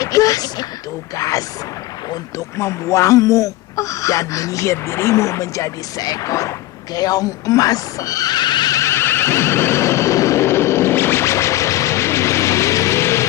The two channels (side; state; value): right; quieter; 16.3 dB